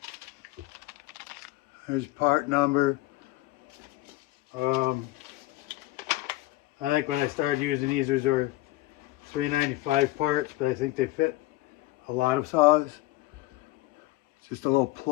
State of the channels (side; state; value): right; quieter; 18.2 dB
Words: There's part number. I think when I started using these, there were 395 parts, but I think they fit a lot of saws. It's just a little